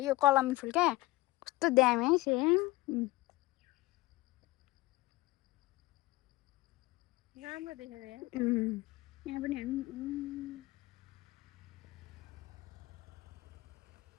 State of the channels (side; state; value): right; quieter; 19.4 dB